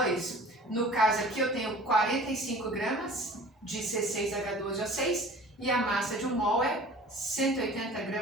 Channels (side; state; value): both; normal; correlation 0.45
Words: No caso aqui eu tenho 45 gramas de C6H12O6 e a massa de 1 mol é 180